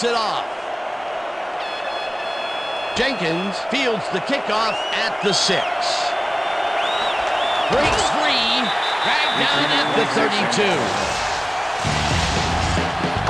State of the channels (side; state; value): both; identical; correlation 1.00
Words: it off. Jenkins fields the kickoff at the 6. Breaks free, dragged down at the 32.